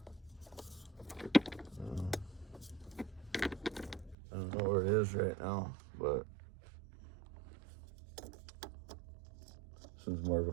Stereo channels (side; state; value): left; drops out; at 4.2 s